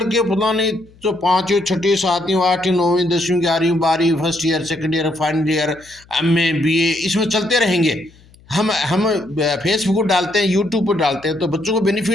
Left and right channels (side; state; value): left; noise; hum, 27 dB below the sound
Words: के पता नहीं जो 5वीं 6वीं 7वीं 8वीं 9वीं 10वीं 11वीं 12वीं first year second year final year MA BA इसमें चलते रहेंगे। हम फेसबुक पर डालते हैं, यूट्यूब पर डालते हैं, तो बच्चों को